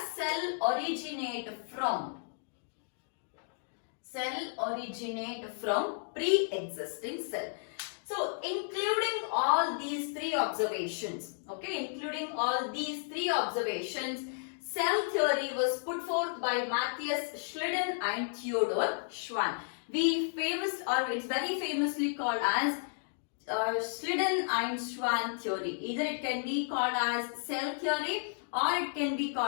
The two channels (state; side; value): silent; right; digital silence